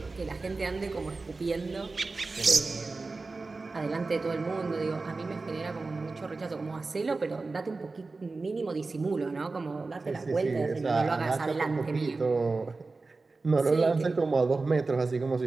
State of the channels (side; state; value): left; quieter; 3.7 dB